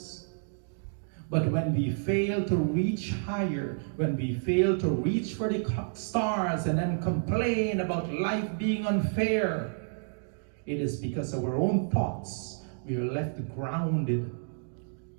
But when we fail to reach higher, when we fail to reach for the stars and then complain about life being unfair, it is because of our own thoughts we are left grounded.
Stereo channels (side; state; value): left; silent; digital silence